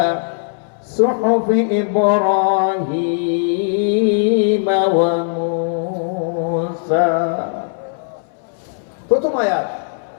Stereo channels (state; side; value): silent; right; 66 dB below the other